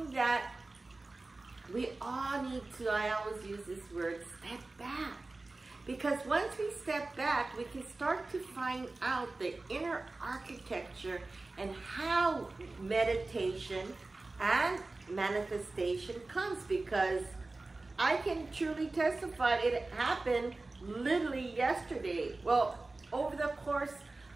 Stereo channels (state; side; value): quieter; left; 3.2 dB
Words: that we all need to, I always use this word, step back. Because once we step back, we can start to find out the inner architecture and how meditation and manifestation comes. Because I can truly testify it happened literally yesterday. Well, over the course